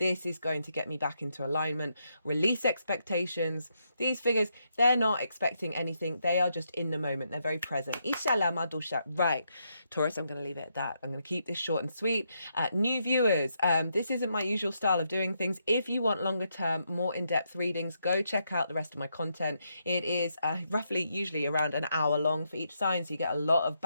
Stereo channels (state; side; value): inverted; both; correlation -0.80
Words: is going to get me back into alignment. Release expectations. These figures, they're not expecting anything. They are just in the moment. They're very present. Right. Taurus, I'm going to leave it at that. I'm going to keep this short and sweet. New viewers, this isn't my usual style of doing things. If you want longer term, more in-depth readings, go check out the rest of my content. It is usually around an hour long for each sign, so you get a lot of